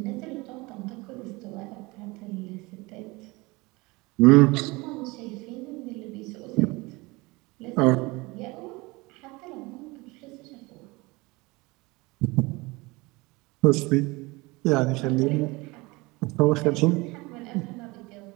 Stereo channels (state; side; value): quieter; left; 23.7 dB